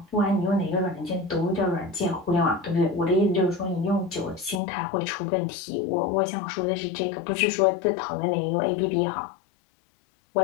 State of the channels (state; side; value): drops out; right; at 4.6 s